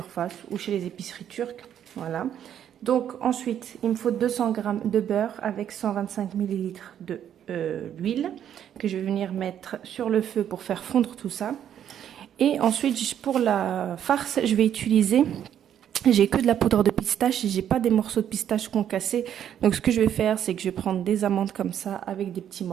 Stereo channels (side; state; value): left; quieter; 9.8 dB